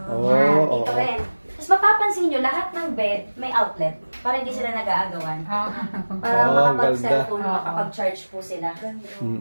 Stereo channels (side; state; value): both; inverted; correlation -1.00